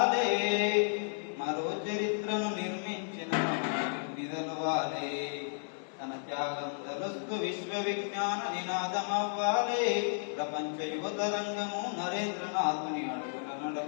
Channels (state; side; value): silent; right; digital silence